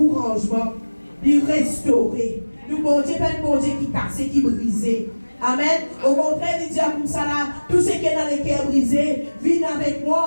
de rangements. Il restaurer. Le bon Dieu pas un bon Dieu qui cassé, qui brisé. Amen. Au contraire, il dit à comme ça là, tout ce qui est dans les cœurs brisés, viens avec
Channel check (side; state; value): both; inverted; correlation -1.00